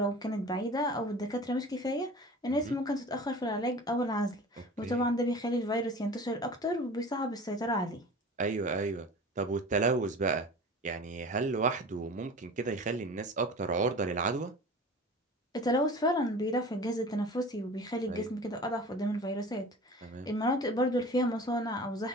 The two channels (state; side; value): normal; both; correlation 0.39